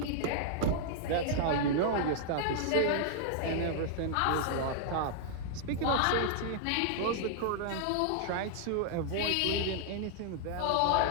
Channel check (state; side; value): different; both; correlation -0.01